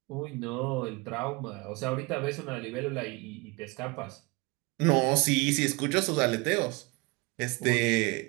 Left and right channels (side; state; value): left; quieter; 26.1 dB